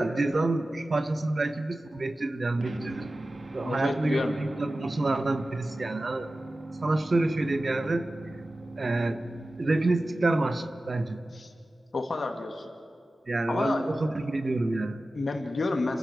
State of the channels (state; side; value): normal; both; correlation 0.95